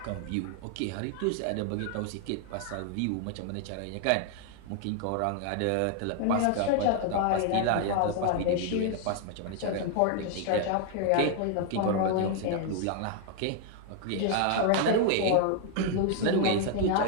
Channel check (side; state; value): both; different; correlation 0.00